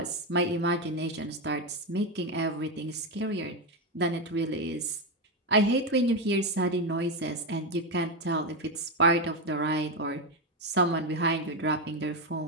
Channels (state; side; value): normal; both; correlation 0.09